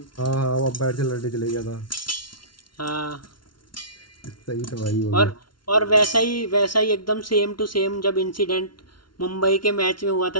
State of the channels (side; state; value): right; late; 0.72 ms